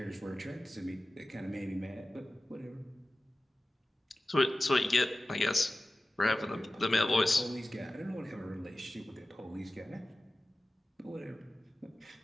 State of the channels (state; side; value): normal; both; correlation 0.95